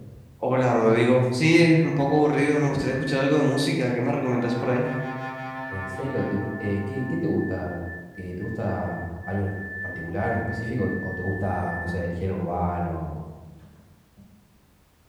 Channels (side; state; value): both; identical; correlation 1.00